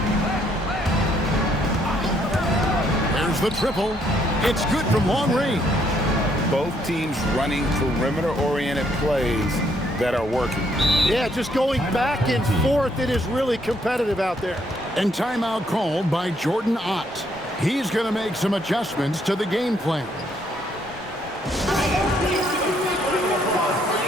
There's the triple. It's good from long range. Both teams running perimeter-oriented plays that are working. Yeah, just going back and forth. It is really competitive out there. And timeout called by Jordan Ott. He's going to make some adjustments to the game plan.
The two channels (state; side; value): normal; both; correlation 0.70